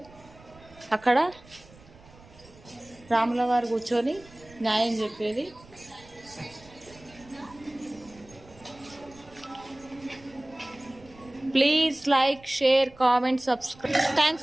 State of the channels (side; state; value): right; noise; rumble, 24 dB below the sound